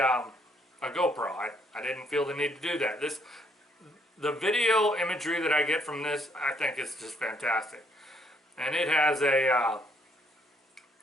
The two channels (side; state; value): both; normal; correlation 0.69